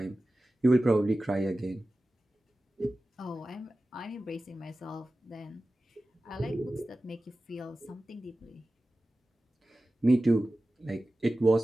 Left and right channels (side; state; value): both; normal; correlation 0.95